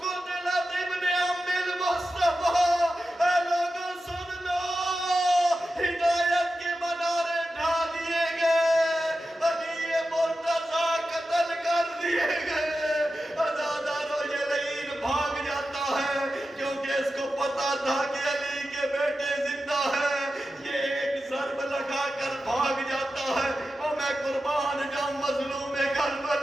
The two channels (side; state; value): both; normal; correlation 0.92